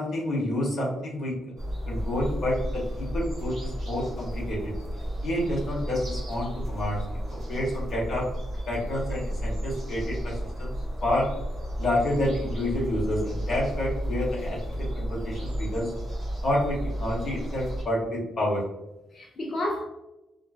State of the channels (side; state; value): both; normal; correlation 0.81